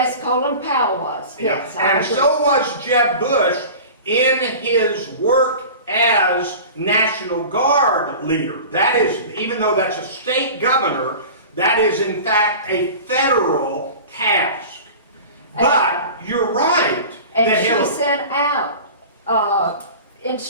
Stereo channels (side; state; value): both; inverted; correlation -0.36